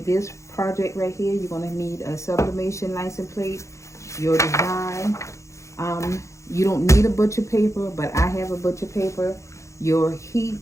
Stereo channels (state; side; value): late; right; 0.15 ms